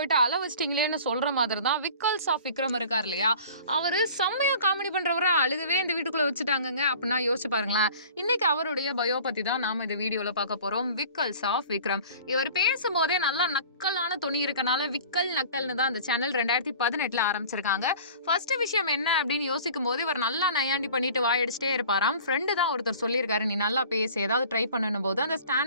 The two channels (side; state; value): both; inverted; correlation -0.45